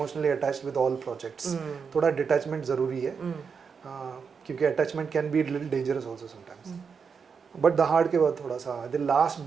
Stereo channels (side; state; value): left; quieter; 6.0 dB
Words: attached with all projects. थोड़ा डिटैचमेंट ज़रूरी है, क्योंकि attachment can be little dangerous also sometimes. But the के बाद थोड़ा सा the last